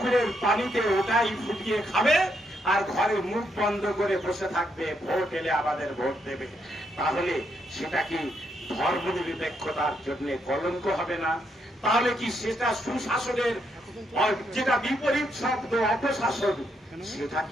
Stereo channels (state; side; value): normal; both; correlation 0.77